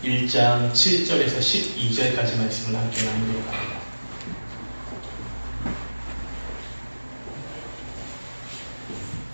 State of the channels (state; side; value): inverted; both; correlation -1.00